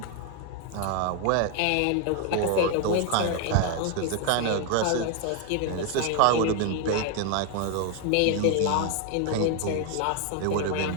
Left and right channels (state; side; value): different; both; correlation 0.01